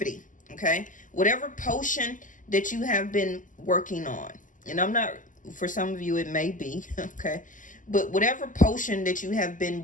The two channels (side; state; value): right; late; 0.38 ms